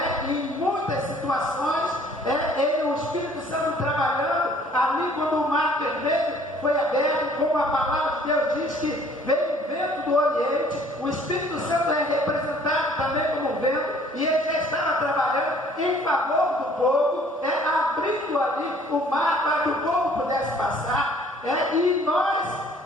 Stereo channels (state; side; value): normal; both; correlation 0.56